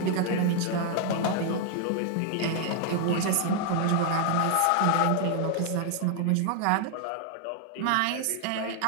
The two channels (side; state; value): both; different; correlation 0.00